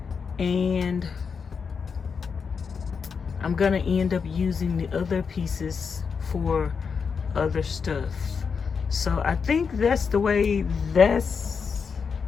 And I'm gonna end up using the other pieces for other stuff. So I think that's the way that's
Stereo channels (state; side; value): quieter; right; 5.8 dB